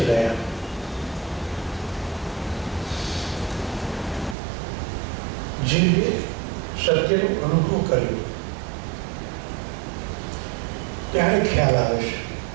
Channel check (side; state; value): left; drops out; at 4.4 s